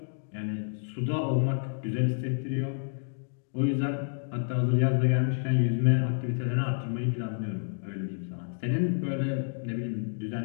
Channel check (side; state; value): right; silent; digital silence